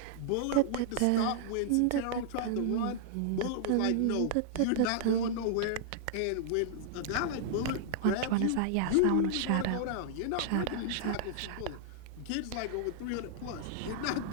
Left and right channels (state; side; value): different; both; correlation -0.01